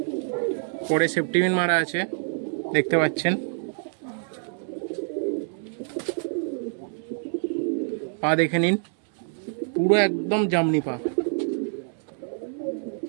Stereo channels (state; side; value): silent; left; 61 dB below the other